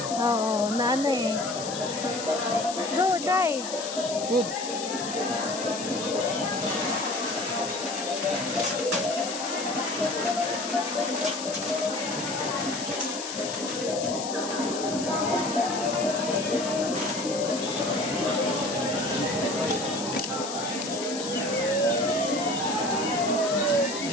Oo, na ano eh. Go, try. Good.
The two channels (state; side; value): noise; left; hiss, 7 dB below the sound